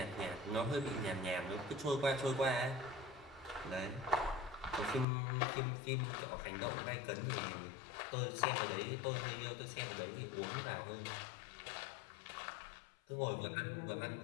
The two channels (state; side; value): drops out; right; at 5.1 s